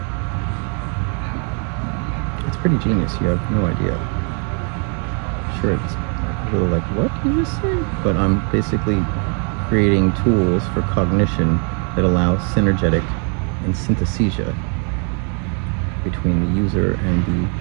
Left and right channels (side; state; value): left; quieter; 39.6 dB